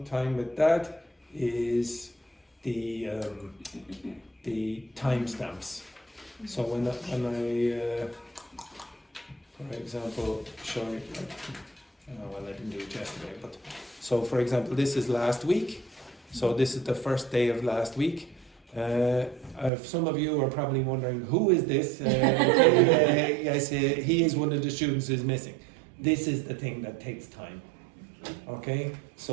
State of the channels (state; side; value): drops out; left; at 19.7 s